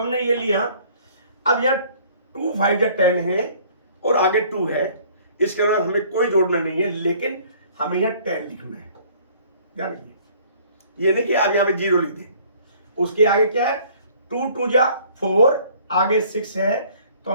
ये लिया, अब यहां 2 5 जा 10 है और आगे 2 है, इसके बाद हमें कोई जोड़ना नहीं है, लेकिन हमें यहां 10 लिखना है। ध्यान रखिए, ये नहीं कि आप यहां पे 0 लिख दें। उसके आगे क्या है, 2 2 जा 4, आगे 6 है तो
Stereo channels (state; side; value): inverted; both; correlation -0.55